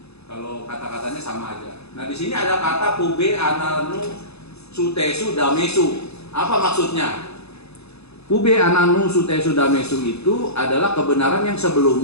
Kalau kata-katanya sama aja. Nah, di sini ada kata pube ananu sutesu damesu. Apa maksudnya? Pube ananu sutesu damesu itu adalah kebenaran yang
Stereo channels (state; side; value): late; right; 0.79 ms